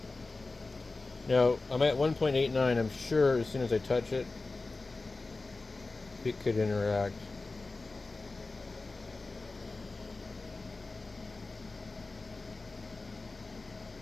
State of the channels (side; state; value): right; quieter; 3.5 dB